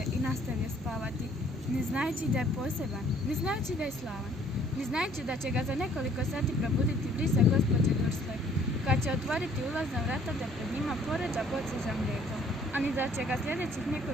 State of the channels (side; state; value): both; normal; correlation 0.60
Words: i nastavio spavati, ne znajući da je poseban, ne znajući da je slavan, ne znajući da će ga za nekoliko sati probuditi brisa gospođe Dursley, koja će otvoriti ulazna vrata da pred njima poređa boce za mlijeko, a ni da će ga sljedećih